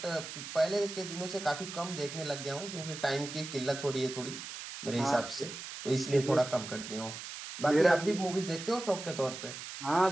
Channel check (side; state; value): right; noise; hiss, 9 dB below the sound